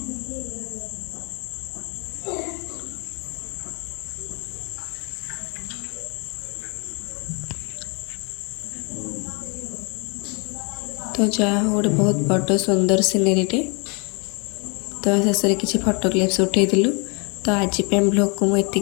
तो जहाँ हो गोटे बहुत बड़ सुंदर सीनेरीटे। तो शेष में किसी फोटो क्लिप्स उठेलु। तो आज ब्लॉग को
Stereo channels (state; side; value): quieter; right; 32.3 dB